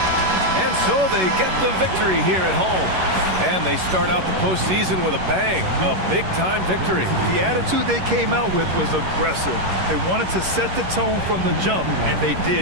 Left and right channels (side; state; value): left; late; 11 ms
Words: And so they get the victory here at home. And they start out the postseason with a bang, a big-time victory. The attitude they came out with was aggressive. They wanted to set the tone from the jump, and they